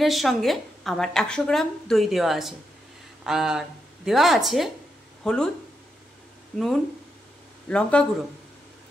সঙ্গে আমার 100 গ্রাম দই দেওয়া আছে, আর দেওয়া আছে হলুদ, নুন, লঙ্কা গুঁড়ো,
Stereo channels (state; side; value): normal; both; correlation 0.83